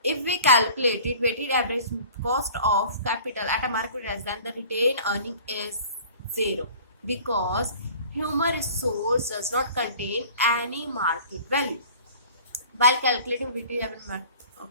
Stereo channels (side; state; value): both; inverted; correlation -0.46